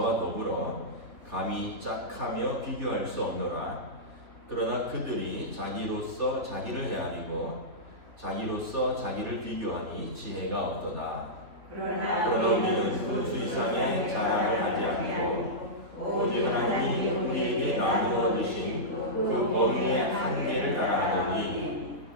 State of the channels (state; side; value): late; left; 3.5 ms